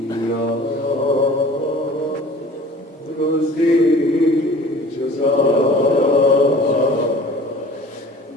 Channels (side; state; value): both; normal; correlation 0.46